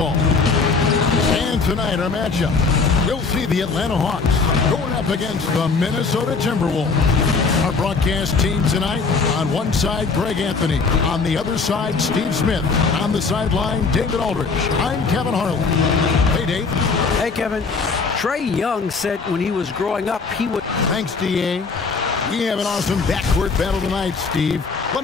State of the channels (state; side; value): quieter; right; 4.6 dB